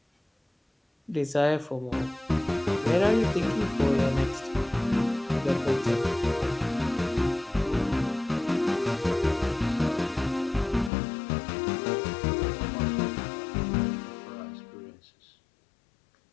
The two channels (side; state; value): right; drops out; at 10.9 s